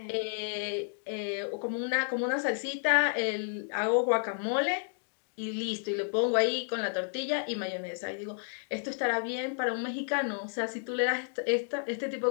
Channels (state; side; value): silent; right; digital silence